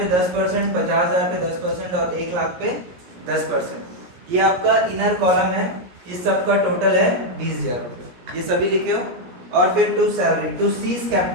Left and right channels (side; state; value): left; late; 17 ms